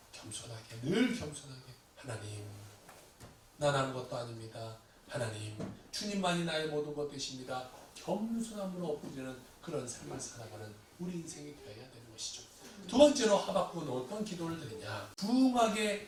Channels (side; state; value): both; identical; correlation 1.00